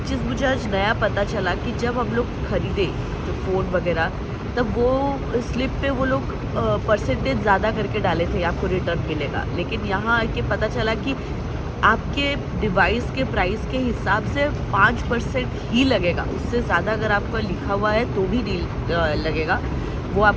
चीज़ मुझे आज नया पता चला कि जब हम लोग ख़रीदे जो फ़ोन वगैरह, तब वो स्लिप पे वो लोग परसेंटेज ज़्यादा करके डाले थे, आपको रिटर्न मिलेगा। लेकिन यहाँ आके पता चला कि आपके डिवाइस के प्राइस के हिसाब से 5% ही लगेगा, उससे ज़्यादा अगर आपका लिखा हुआ है तो भी नहीं लगेगा। वो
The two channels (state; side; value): identical; both; correlation 1.00